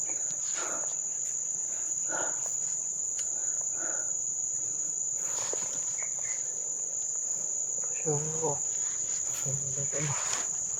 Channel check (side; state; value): both; identical; correlation 1.00